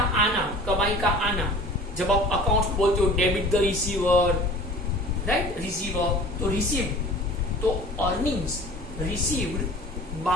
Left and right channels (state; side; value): normal; both; correlation 0.44